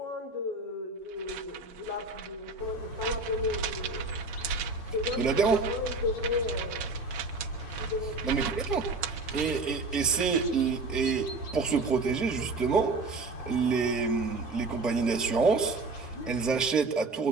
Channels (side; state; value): left; quieter; 3.5 dB